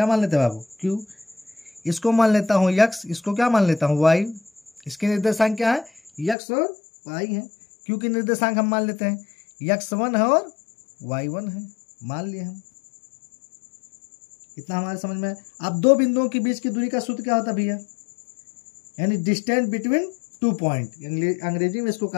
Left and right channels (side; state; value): right; drops out; at 6.4 s